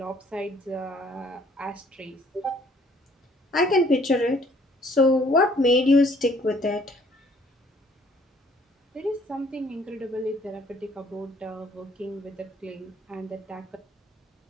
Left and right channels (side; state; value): both; normal; correlation 0.60